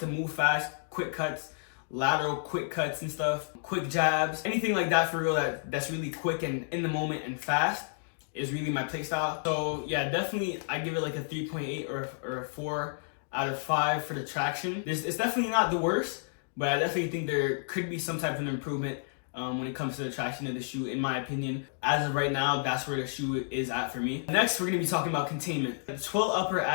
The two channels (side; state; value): right; silent; digital silence